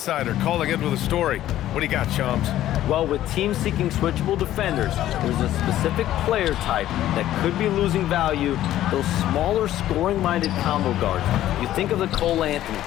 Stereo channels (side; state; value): right; quieter; 13.2 dB